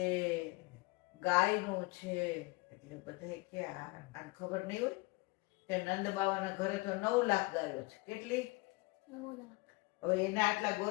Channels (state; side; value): quieter; right; 24.9 dB